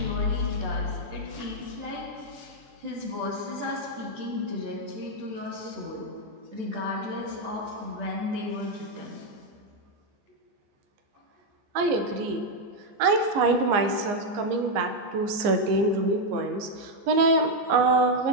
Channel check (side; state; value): left; late; 15 ms